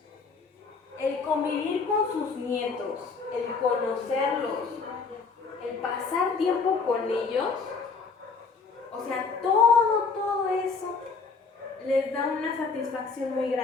El convivir con sus nietos, el conocerlos, el pasar tiempo con ellos, o sea, todo eso les da una satisfacción muy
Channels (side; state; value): right; quieter; 4.8 dB